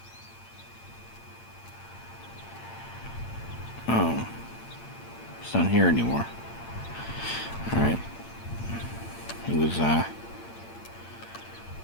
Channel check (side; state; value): right; late; 8.8 ms